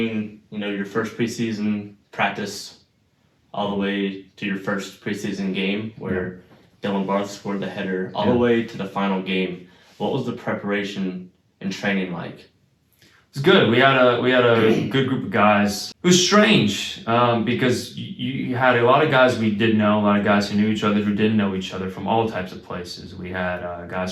your first preseason practice all the way to your first preseason game where Dylan Barth scored the header, all the way to the final game, what was the preparation and training like? It was good. We had a good group of guys. It was strange because you had a lot of guys we did know, a lot of guys who knew each other who didn't know each other from all types of places. We had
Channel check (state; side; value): identical; both; correlation 1.00